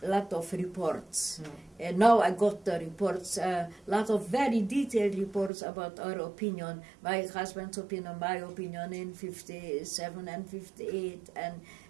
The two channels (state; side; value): drops out; left; at 5.5 s